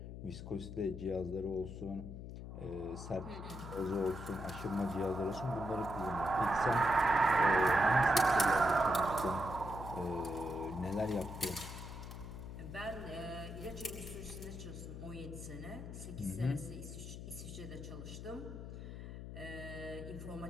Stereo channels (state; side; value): noise; left; hum, 9 dB below the sound